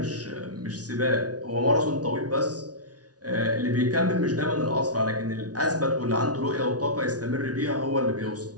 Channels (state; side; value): late; left; 0.68 ms